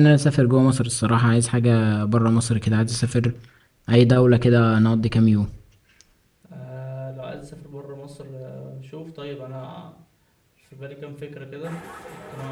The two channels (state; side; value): identical; both; correlation 1.00